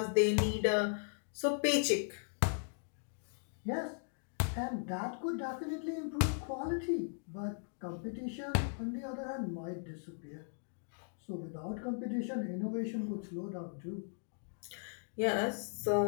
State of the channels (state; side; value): silent; right; digital silence